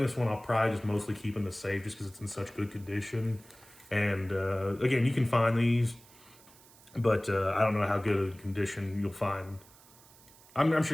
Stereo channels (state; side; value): noise; right; hiss, 24 dB below the sound